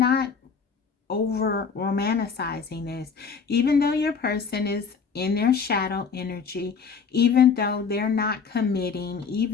over romanticizing this. Even though your person is in their shadow energy, even though they're not committing,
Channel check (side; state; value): right; quieter; 5.8 dB